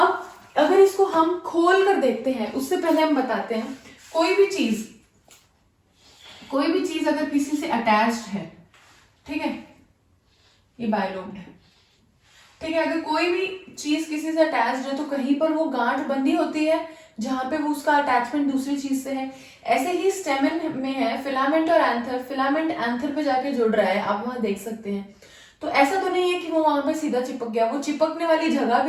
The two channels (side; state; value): both; identical; correlation 1.00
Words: अगर इसको हम खोल कर देखते हैं, उससे पहले हम बताते हैं कोई भी चीज अगर किसी से अटैच्ड है, ठीक है, ये बाइलोब्ड है, ठीक है, अगर कोई भी चीज किसी से अटैच्ड है तो कहीं पर वो गांठ बंधी होती है जहां पे वो उसका अटैचमेंट दूसरी चीज से है। ऐसे ही स्टेमन में है फिलामेंट और एंथर, फिलामेंट एंथर पे जाके जुड़ रहा है, आप वहां देख सकते हैं। तो ऐसा तो नहीं है कि वो वहां पे सीधा चिपक गया, वो चिपकने वाली जगह